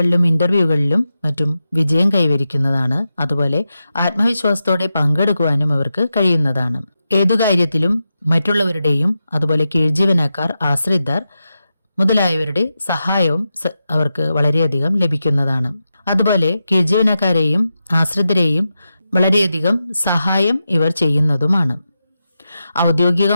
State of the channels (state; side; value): inverted; both; correlation -0.89